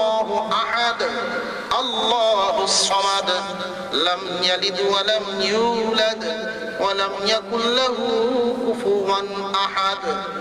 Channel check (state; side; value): identical; both; correlation 1.00